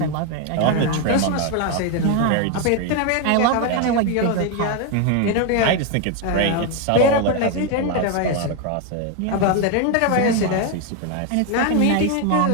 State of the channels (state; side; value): different; both; correlation 0.01